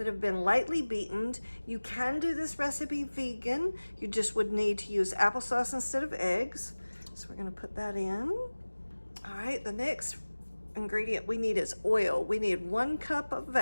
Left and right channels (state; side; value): inverted; both; correlation -1.00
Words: have been lightly beaten. You can do this recipe vegan. You just would need to use applesauce instead of eggs. So we're going to put that in. All right, the next ingredient we need is oil. We need 1 cup of